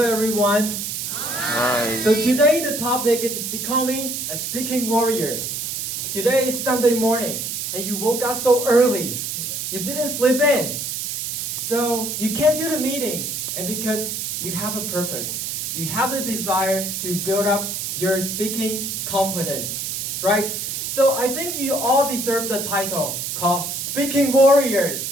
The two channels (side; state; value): right; noise; hiss, 3 dB below the sound